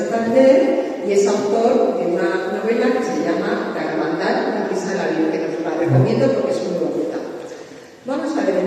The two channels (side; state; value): both; identical; correlation 1.00